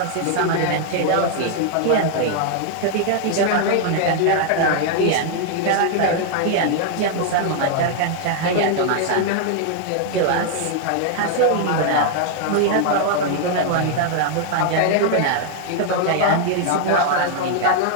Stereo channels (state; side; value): different; both; correlation 0.00